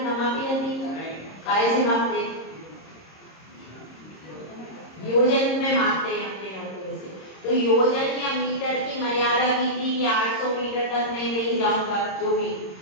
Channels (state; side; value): late; right; 26 ms